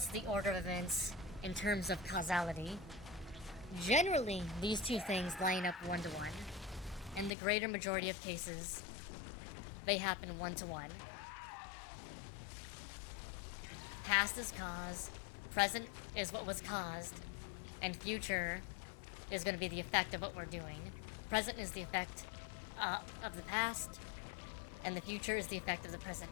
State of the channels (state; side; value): drops out; right; at 7.3 s